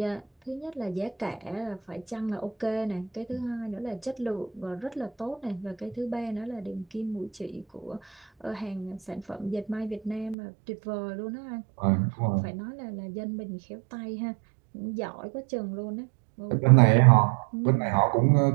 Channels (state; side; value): drops out; left; at 10.4 s